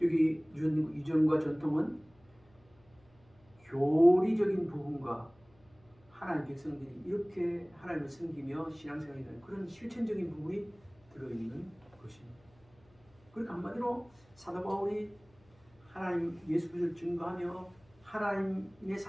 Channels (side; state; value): left; noise; hum, 30 dB below the sound